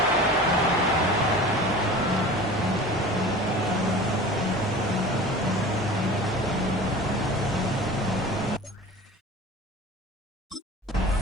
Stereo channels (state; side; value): normal; both; correlation 0.38